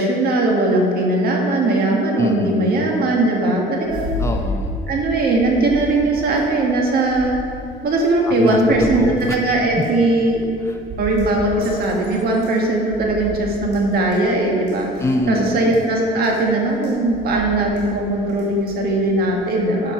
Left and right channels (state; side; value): normal; both; correlation 0.45